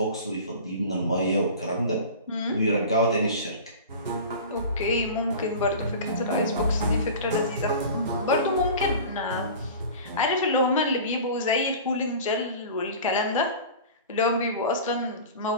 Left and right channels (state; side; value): inverted; both; correlation -0.36